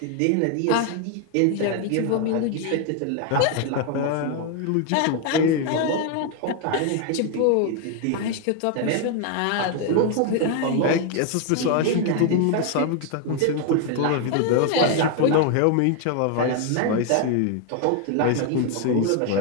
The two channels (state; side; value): different; both; correlation 0.01